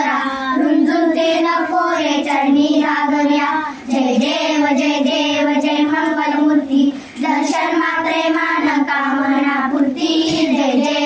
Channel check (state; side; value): identical; both; correlation 1.00